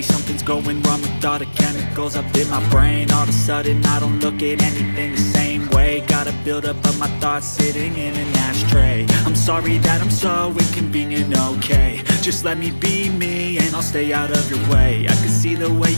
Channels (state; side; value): inverted; both; correlation -1.00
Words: Something's going wrong with all the chemicals up in my brain. All of a sudden I don't look at anything the same way. Gotta build up of my thoughts sitting in an ashtray. I'm sorry that I'm so inconvenient, okay? Just let me be me and I'll stay out of your way. I can see the way